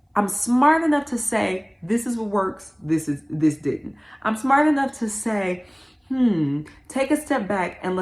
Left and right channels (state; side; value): identical; both; correlation 1.00